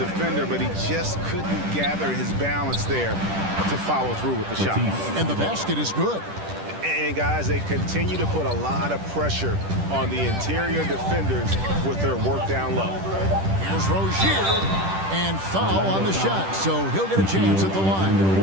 but he just couldn't gather his balance there to follow through with the shot. And the basket is good. And guys, they continue to put a lot of pressure on the interior defenders with their work down low. Here's Rozier, and foul on the shot, so he'll get a chance at the line.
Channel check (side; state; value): left; late; 10 ms